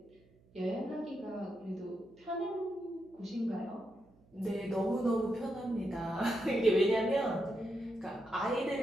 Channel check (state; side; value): noise; right; hum, 29 dB below the sound